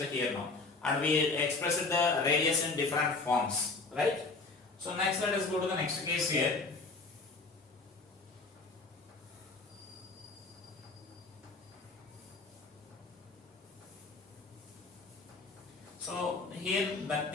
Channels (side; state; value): right; quieter; 3.8 dB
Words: here now. And we expressed the radius in different forms, right? So next let us go to the next case here. So here the